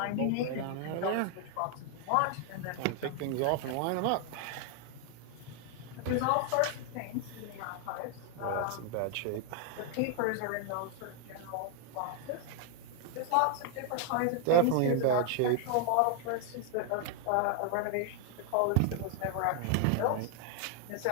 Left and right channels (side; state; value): both; different; correlation 0.00